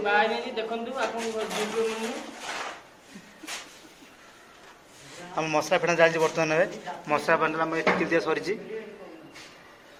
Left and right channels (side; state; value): both; identical; correlation 1.00